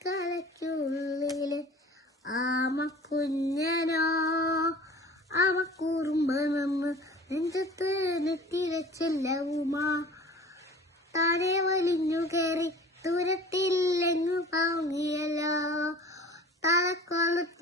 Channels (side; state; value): both; normal; correlation 0.44